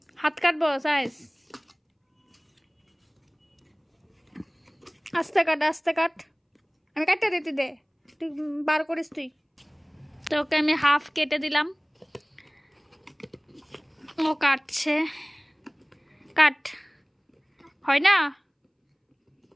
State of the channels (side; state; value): both; identical; correlation 1.00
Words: হাত কাটবো সাইজ, আস্তে কাট আস্তে কাট, আমি কাটটা দিতে দে, তুই বার করিস তুই। তো ওকে আমি হাফ কেটে দিলাম, ও কাটছে। কাট হয় না,